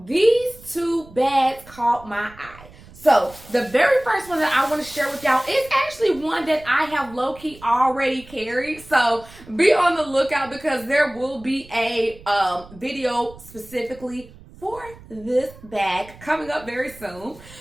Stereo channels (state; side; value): noise; right; rumble, 21 dB below the sound